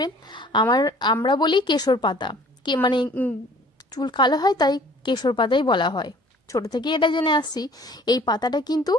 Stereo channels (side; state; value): both; normal; correlation 0.52